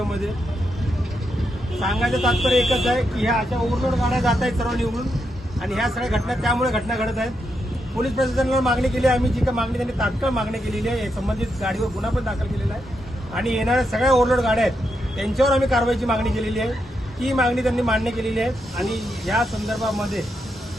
सांगायचं तात्पर्य एकच आहे की ह्या अशा ओव्हरलोड गाड्या जात आहेत सर्व निवडून, आणि ह्या सगळ्या घटना त्यामुळे घटना घडत आहेत. पोलीस प्रशासनाला मागणी केली आहे आम्ही, जी काही मागणी त्यांनी तात्काळ मागणी केलेली आहे. संबंधित गाडीवर गुन्हा पण दाखल केलेला आहे आणि येणाऱ्या सगळ्या ओव्हरलोड गाड्या आहेत त्यांच्यावर आम्ही कारवाईची मागणी केलेली आहे. ती मागणी त्यांनी मान्य केलेली आहे आणि या संदर्भामध्ये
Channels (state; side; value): normal; both; correlation 0.82